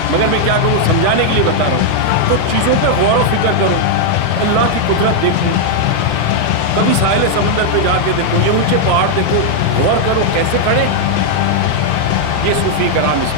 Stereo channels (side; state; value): both; different; correlation -0.01